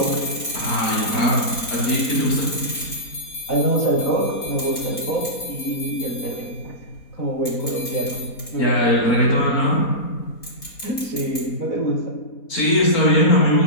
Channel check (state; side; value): late; right; 4.2 ms